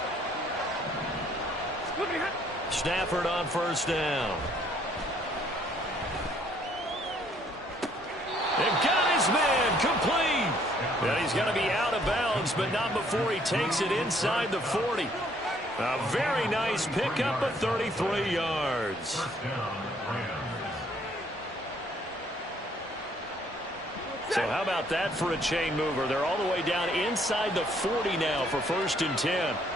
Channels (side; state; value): both; normal; correlation 0.64